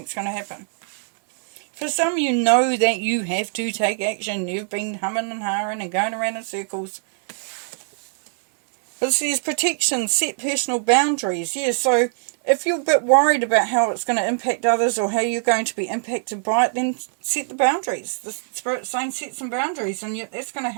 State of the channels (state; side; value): silent; left; 63 dB below the other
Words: going to happen. For some, you know that you have to take action. You've been humming and hawing and going around in circles. But it says protection, set personal boundaries. Yeah, so if you're a bit worried about how it's going to impact others or how you're going to be impacted by it, then set the boundaries. The Spirit's saying set some boundaries, and that's going to